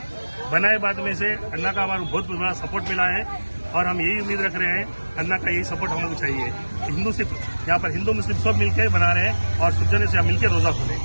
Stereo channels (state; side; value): inverted; both; correlation -1.00